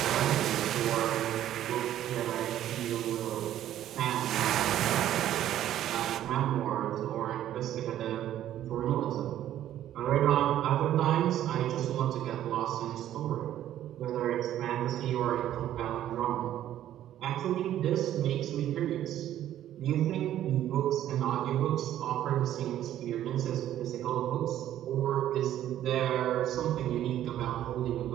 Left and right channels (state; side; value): quieter; left; 12.0 dB